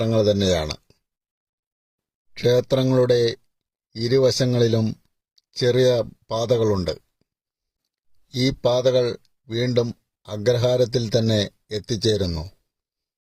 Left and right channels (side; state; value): both; identical; correlation 1.00